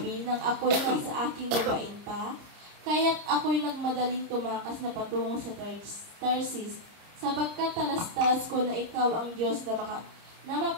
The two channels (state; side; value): late; left; 30 ms